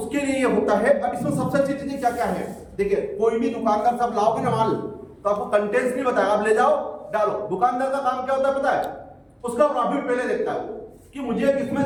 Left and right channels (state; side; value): identical; both; correlation 1.00